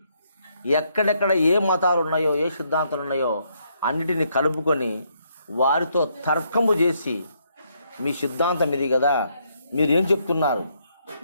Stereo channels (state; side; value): inverted; both; correlation -0.73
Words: ఎక్కడెక్కడ ఏ మతాలు ఉన్నాయో, ఏ సిద్ధాంతాలు ఉన్నాయో అన్నిటిని కలుపుకొని వారితో తర్కము చేసి, మీ సిద్ధాంతం ఇది కదా, మీరేం చెప్తున్నారు,